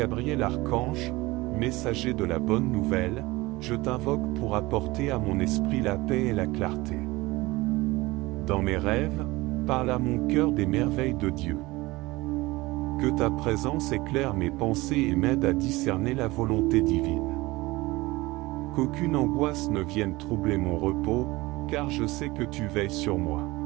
Archange, messager de la bonne nouvelle, je t'invoque pour apporter à mon esprit la paix et la clarté. Dans mes rêves, parle à mon cœur des merveilles de Dieu. Que ta présence éclaire mes pensées et m'aide à discerner la volonté divine. Qu'aucune angoisse ne vienne troubler mon repos, car je sais que tu veilles sur moi.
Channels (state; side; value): quieter; left; 20.9 dB